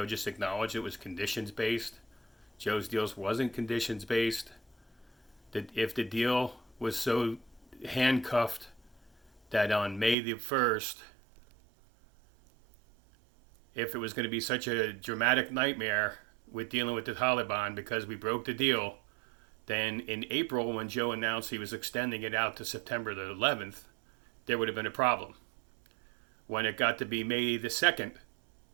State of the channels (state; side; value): drops out; left; at 10.2 s